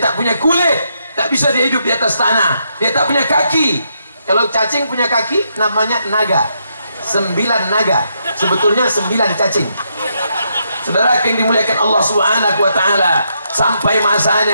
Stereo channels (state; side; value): inverted; both; correlation -0.79